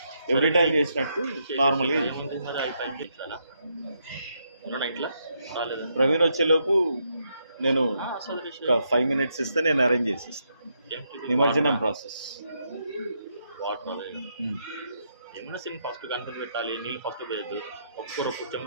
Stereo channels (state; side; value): inverted; both; correlation -0.78